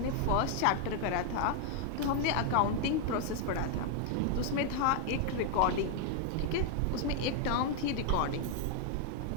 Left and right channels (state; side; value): different; both; correlation 0.00